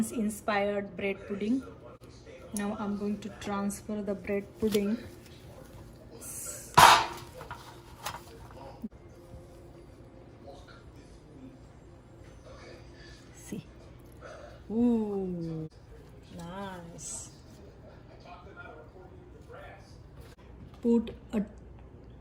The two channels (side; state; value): both; identical; correlation 1.00